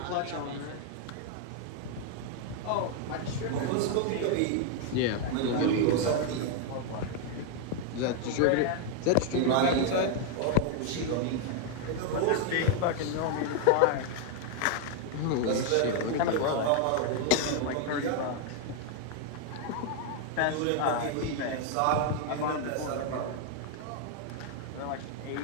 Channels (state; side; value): different; both; correlation 0.00